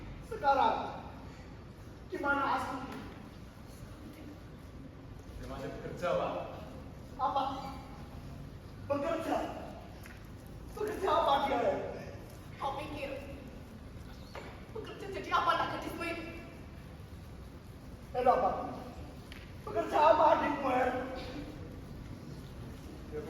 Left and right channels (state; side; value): identical; both; correlation 1.00